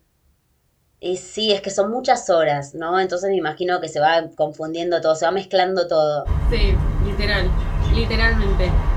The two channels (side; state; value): both; identical; correlation 1.00